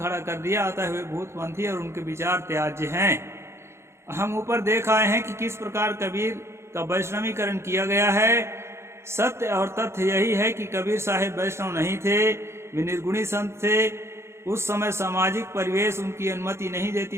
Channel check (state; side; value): late; left; 0.13 ms